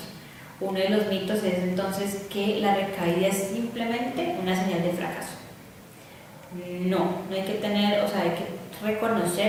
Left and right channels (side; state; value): both; identical; correlation 1.00